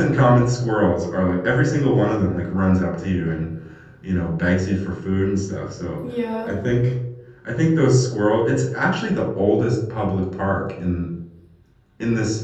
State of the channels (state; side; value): identical; both; correlation 1.00